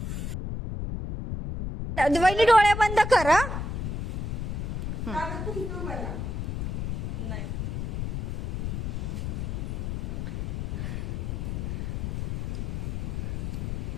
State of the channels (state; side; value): noise; left; rumble, 2 dB below the sound